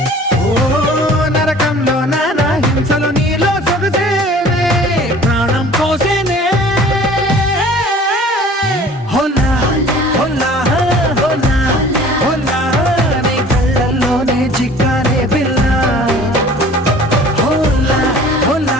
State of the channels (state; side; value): normal; both; correlation 0.47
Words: ఓ నరకంలో నానా హింసలో నీలో సొగసేనే ప్రాణం పోసేనే హోలా హోలా హోలా హోలా నీ కళ్ళల్లోనే చిక్కానే పిల్ల హోలా హోలా